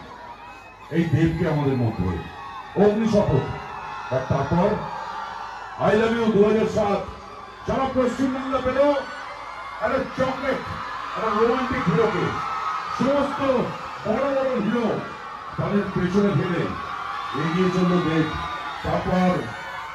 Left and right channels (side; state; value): both; identical; correlation 1.00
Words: এই দেবকে আমাদের মধ্যে, অগ্নি শপথ। আর তারপর আই লাভ ইউ 2007 সারা পশ্চিমবাংলা পেল একটা চকলেট, একটা রোমান্টিক হিরোকে। সমস্ত বড় বড় হিরো তাদের পেছনে ফেলে এগিয়ে চলল দেব। তারপর